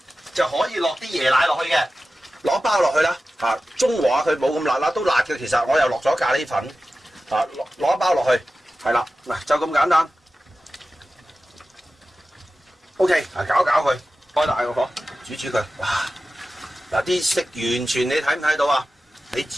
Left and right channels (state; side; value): normal; both; correlation 0.94